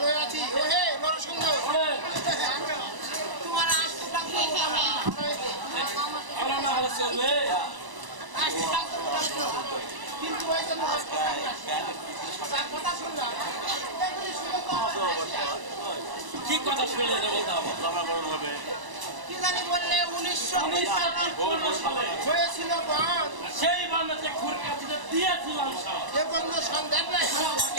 আছি। ও হে নর সুন্দর। তোমার আসতটা কি হবে? আমার না ভালো চলবে। আসতটা কি হবে? কিন্তু ওই যে নর তার কথা শুনলাম। এগুলি শুনে তো আমার হাসি আসে। কি কথা শুনলে বলতে হবে? কি জানি বললে 1919 সালে হয়েছিল বন্ধ। সেই বান্নাতে খুর কাছে দিয়েছিলাম সব। এ বন্ধ সন্দেহ নাই।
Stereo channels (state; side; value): late; left; 1.0 ms